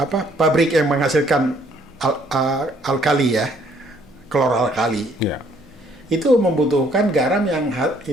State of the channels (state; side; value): normal; both; correlation 0.64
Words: pabrik yang menghasilkan alkali ya, chloralkali. Ya. Itu membutuhkan garam yang